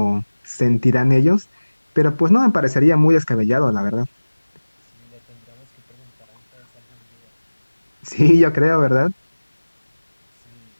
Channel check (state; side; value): inverted; both; correlation -1.00